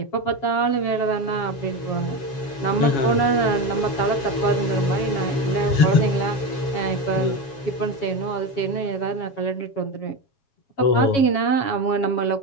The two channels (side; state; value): right; late; 7.2 ms